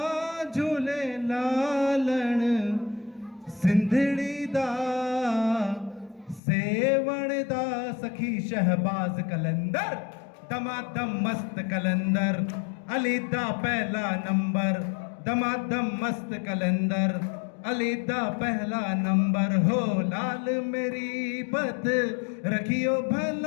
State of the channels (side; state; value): right; drops out; at 6.4 s